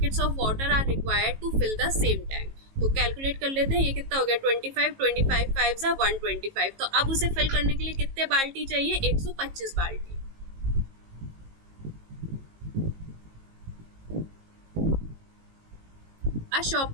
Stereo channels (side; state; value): left; late; 18 ms